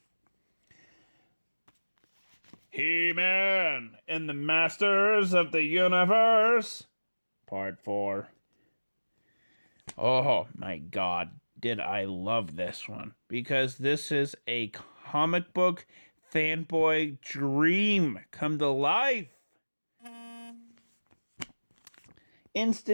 He-Man and the Masters of the Universe, Part 4. Oh my god, did I love this one. Because this is a comic book fanboy dream come to life.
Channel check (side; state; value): both; inverted; correlation -1.00